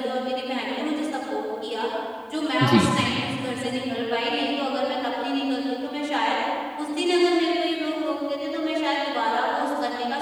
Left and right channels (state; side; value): identical; both; correlation 1.00